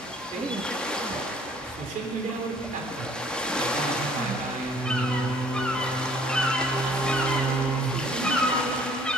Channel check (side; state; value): both; normal; correlation 0.56